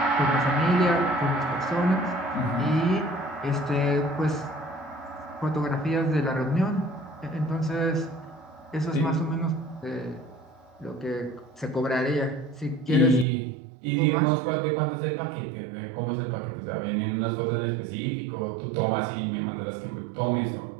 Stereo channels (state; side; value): drops out; left; at 13.2 s